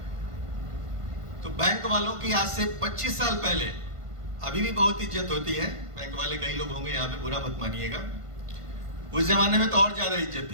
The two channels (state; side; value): late; left; 1.5 ms